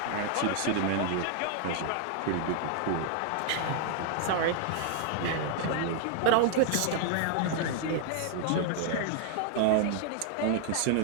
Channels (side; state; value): both; different; correlation 0.00